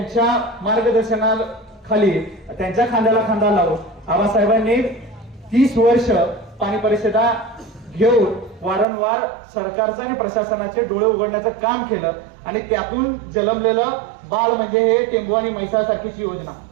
मार्गदर्शनाखाली त्यांच्या खांद्याला खांदा लावून आबासाहेबांनी 30 वर्ष पाणी परिषदा घेऊन वारंवार सरकारचं आणि प्रशासनाचे डोळे उघडण्याचं काम केलं। आणि त्यातून जन्मलेलं बाळ म्हणजे हे टेंबू आणि म्हैसासारखीची योजना,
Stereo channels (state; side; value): drops out; left; at 8.8 s